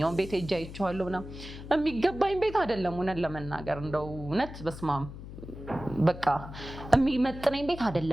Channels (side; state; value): left; noise; hum, 12 dB below the sound